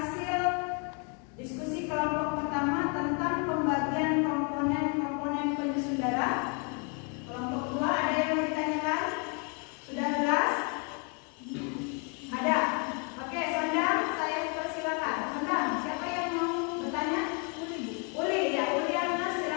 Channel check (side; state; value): right; quieter; 36.3 dB